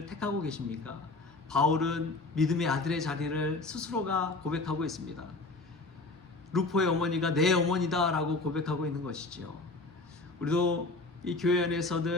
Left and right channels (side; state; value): right; quieter; 3.3 dB